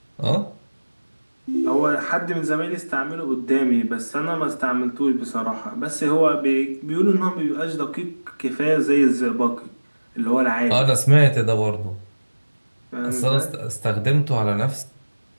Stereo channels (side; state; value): both; inverted; correlation -1.00